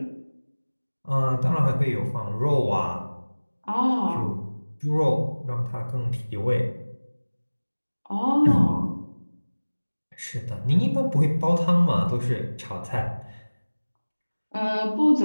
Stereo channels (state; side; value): inverted; both; correlation -1.00